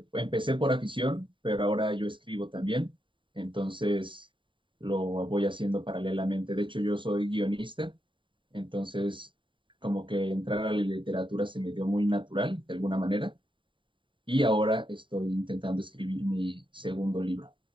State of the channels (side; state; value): left; late; 0.24 ms